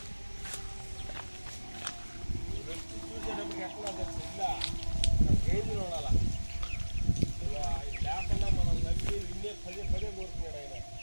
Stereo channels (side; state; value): both; inverted; correlation -1.00